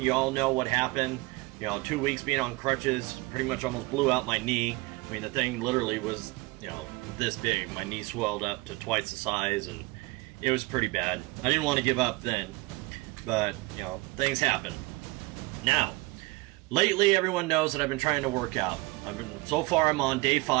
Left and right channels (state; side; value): quieter; left; 23.1 dB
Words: all know what happened. 2 weeks being on crutches, pretty much almost blew out my knee. I mean, the thing literally was, this big. My knee swelled up to twice the size, and it was pretty bad. I didn't want to give up then, but, things happen. Now, lately everyone knows that I've been trying to work out. So far I'm on day